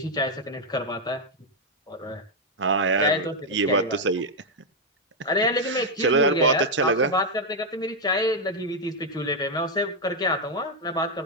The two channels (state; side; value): normal; both; correlation 0.01